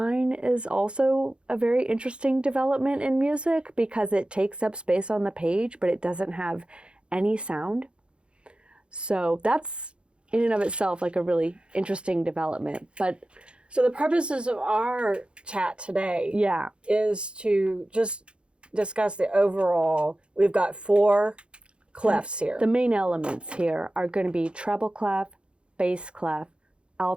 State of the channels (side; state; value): left; late; 0.056 ms